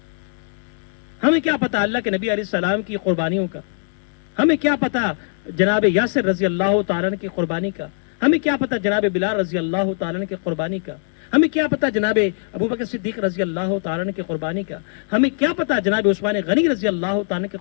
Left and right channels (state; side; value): silent; right; 65 dB below the other